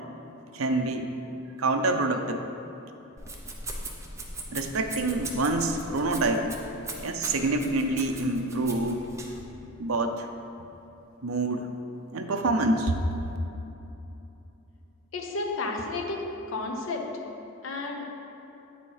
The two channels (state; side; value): normal; both; correlation 0.21